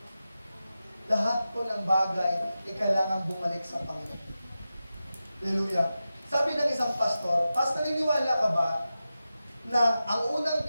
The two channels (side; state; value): both; inverted; correlation -0.93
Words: Lahat po ng bagay ay kailangan bumalik sa Panginoon. Hallelujah. Sabi ng isang pastor, naniniwala ka ba na ang unang